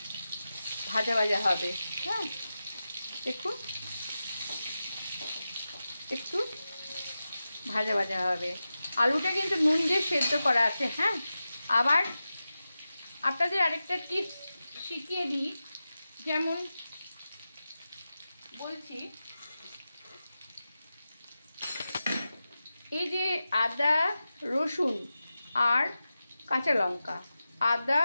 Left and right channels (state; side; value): inverted; both; correlation -0.93